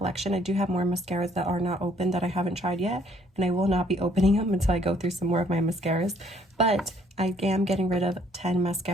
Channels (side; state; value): both; normal; correlation 0.64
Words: I do have more mascaras that are not open that I haven't tried yet, and I will not be opening them until I go through some more of my mascaras, but I am getting rid of 10